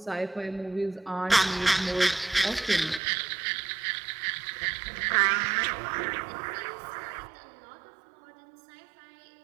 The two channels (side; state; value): left; drops out; at 3.0 s